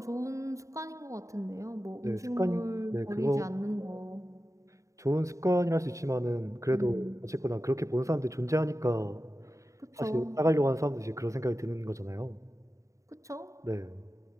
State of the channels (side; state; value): left; late; 0.15 ms